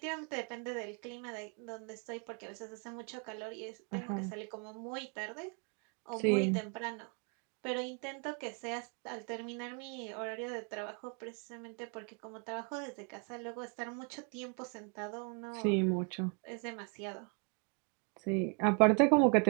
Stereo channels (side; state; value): left; quieter; 37.7 dB